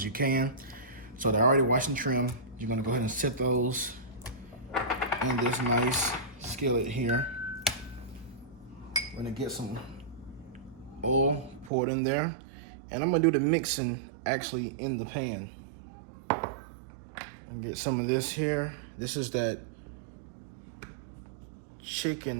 you can. So they're already washed and trimmed. You're gonna go ahead and set those in this nice skillet here. We're gonna get some oil poured in there. And I'm gonna do the mixing actually in the pan. And get some of this here. This is that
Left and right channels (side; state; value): left; drops out; at 11.7 s